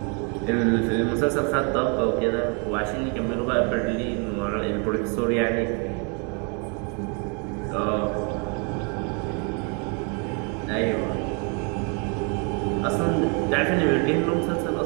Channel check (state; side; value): quieter; left; 36.2 dB